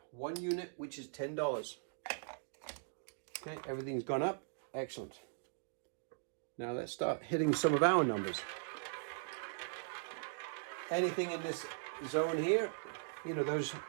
1 unit, which is $10. Okay, everything's gone up. Excellent. Now let's start hitting some of our numbers. Anything in this zone here, you know, those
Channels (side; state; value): left; silent; digital silence